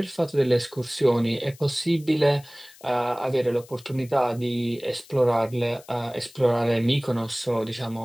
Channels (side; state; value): left; noise; hiss, 23 dB below the sound